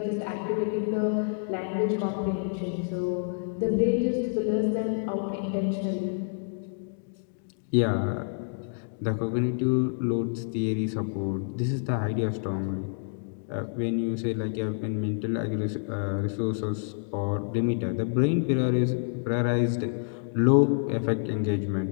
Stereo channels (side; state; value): right; silent; digital silence